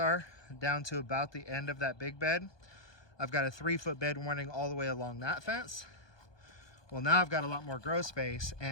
down to about the end of that big bed, I've got a 3-foot bed running all the way along that fence. Well, now I've got a lot more grow space,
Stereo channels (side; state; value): right; late; 1.2 ms